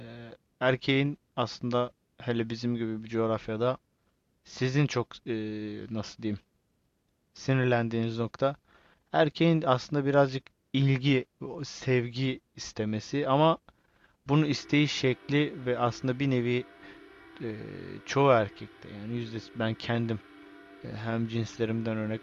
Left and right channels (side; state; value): both; identical; correlation 1.00